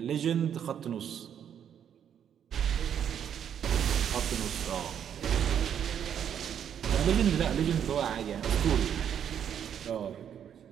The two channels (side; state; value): left; quieter; 8.9 dB